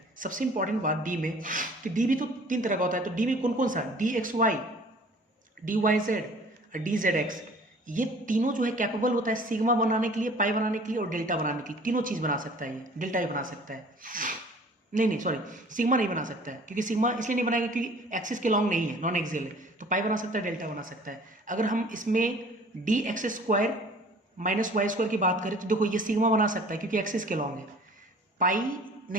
सबसे इंपॉर्टेंट बात डी में, कि डी भी तो 3 तरह का होता है, तो डी में कौन कौन सा, D X Y, D Y Z और डी जेड एक्स, ये तीनों जो है कैपेबल होता है सिग्मा बनाने के लिए, पाई बनाने के लिए और डेल्टा बनाने के लिए। तीनों चीज़ बना सकता है, ये डेल्टा ही बना सकता है, नहीं सॉरी, सिग्मा नहीं बना सकता है, क्योंकि सिग्मा इसलिए नहीं बनाएगा क्योंकि एक्सिस के लॉन्ग नहीं है, नॉन एक्सियल है। तो पाई बना सकता है, डेल्टा बना सकता है। अगर हम इसमें D X square minus Y square की बात करें तो देखो ये सिग्मा बना सकता है क्योंकि एक्सिस के लॉन्ग है, पाई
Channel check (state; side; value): normal; both; correlation 0.49